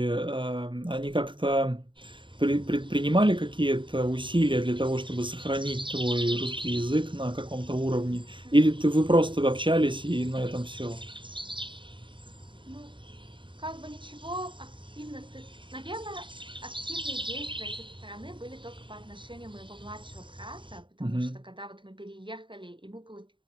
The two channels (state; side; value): late; left; 0.24 ms